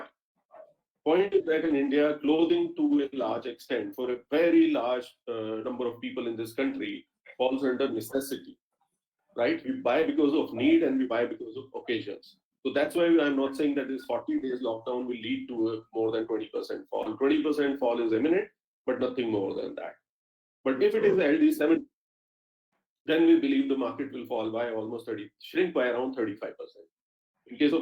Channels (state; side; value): identical; both; correlation 1.00